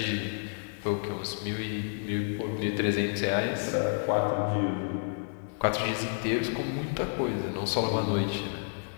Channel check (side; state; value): right; silent; 58 dB below the other